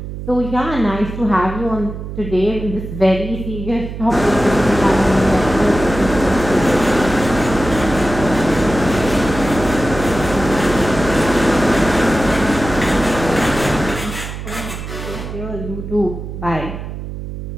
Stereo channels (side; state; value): right; noise; hum, 8 dB below the sound